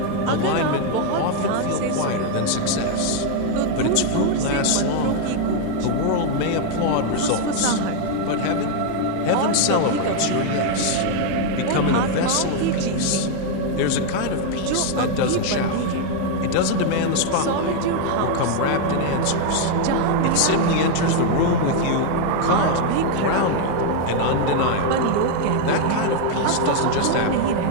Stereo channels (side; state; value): both; different; correlation 0.00